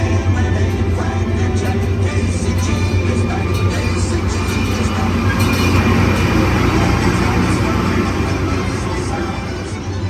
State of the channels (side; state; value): both; identical; correlation 1.00